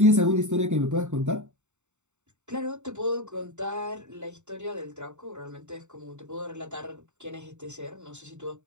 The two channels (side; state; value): left; late; 0.84 ms